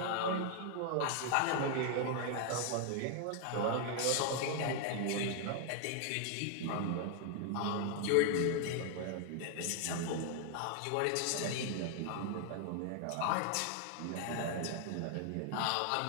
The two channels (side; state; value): both; different; correlation 0.00